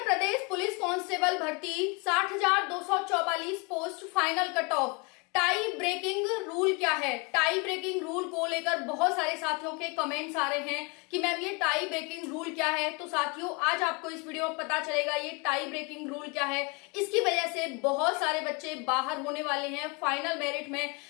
प्रदेश police constable भर्ती 60,244 post final cut off. Tie breaking rule क्या है? टाई ब्रेकिंग रूल को लेकर बहुत सारे साथियों के कमेंट्स आ रहे हैं कि मैम ये टाई ब्रेकिंग रूल क्या है। तो साथियों आज आपको इस वीडियो में पता चलेगा ये टाई ब्रेकिंग रूल क्या है। इसकी वजह से बहुत सारे बच्चे बाहर होने वाले हैं फाइनल मेरिट में,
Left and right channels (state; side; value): quieter; right; 30.1 dB